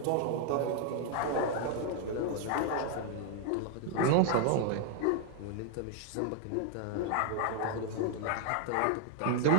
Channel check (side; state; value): both; different; correlation 0.00